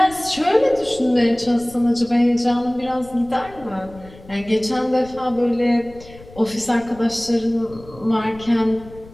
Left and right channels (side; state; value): left; noise; rumble, 20 dB below the sound